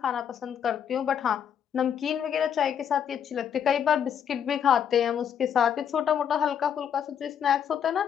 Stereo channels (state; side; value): quieter; right; 8.4 dB